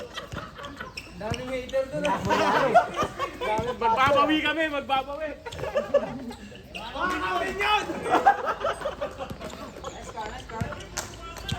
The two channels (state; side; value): identical; both; correlation 1.00